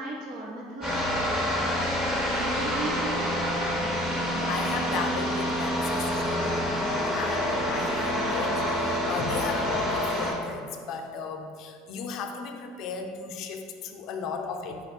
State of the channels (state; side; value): normal; both; correlation 0.49